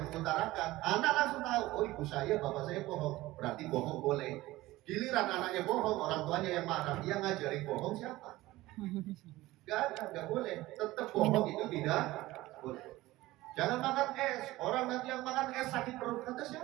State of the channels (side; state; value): left; quieter; 18.0 dB